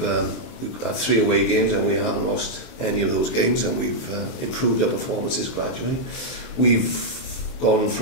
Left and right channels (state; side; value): late; right; 23 ms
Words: had 3 away games and we haven't lost any of those games, and we've improved our performances gradually. We've gone